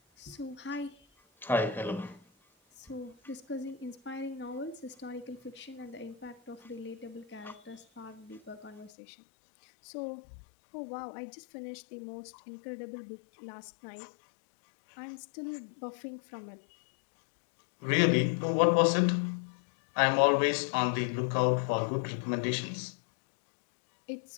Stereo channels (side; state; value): right; drops out; at 8.9 s